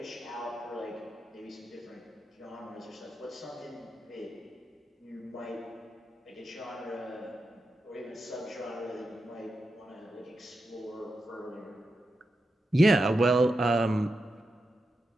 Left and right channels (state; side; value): normal; both; correlation 0.88